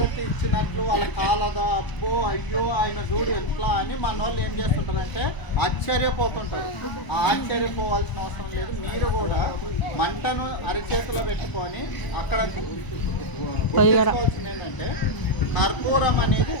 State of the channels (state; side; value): late; right; 1.0 ms